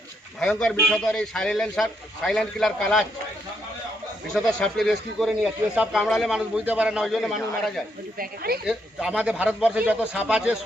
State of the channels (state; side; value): normal; both; correlation 0.76